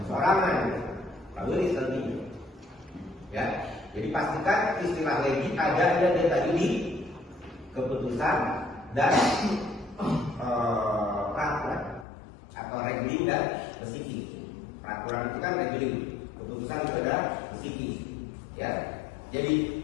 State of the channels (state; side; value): drops out; right; at 12.1 s